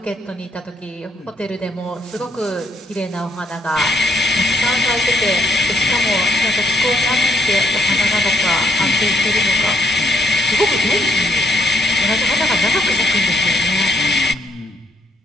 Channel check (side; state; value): both; normal; correlation 0.71